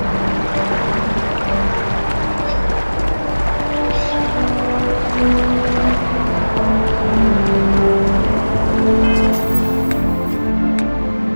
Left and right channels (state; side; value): inverted; both; correlation -1.00